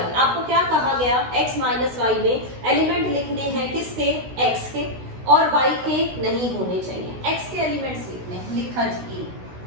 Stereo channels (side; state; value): left; late; 16 ms